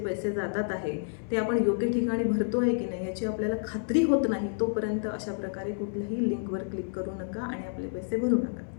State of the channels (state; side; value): silent; right; 58 dB below the other